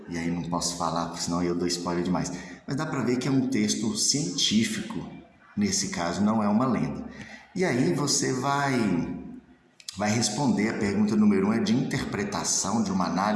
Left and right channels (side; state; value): both; identical; correlation 1.00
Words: E aí não posso falar, porque senão eu dou spoiler demais. Mas dá para ver que é um texto científico, nesse caso não é uma lenda. E aí você vai responder a pergunta número 1, é de interpretação, de uma